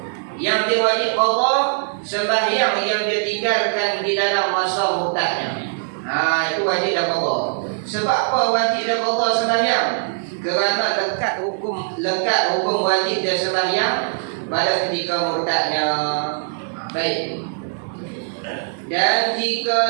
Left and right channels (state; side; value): silent; left; digital silence